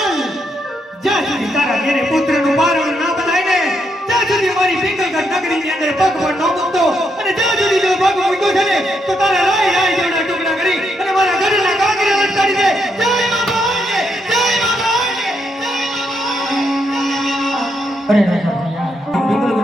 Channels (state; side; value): normal; both; correlation 0.79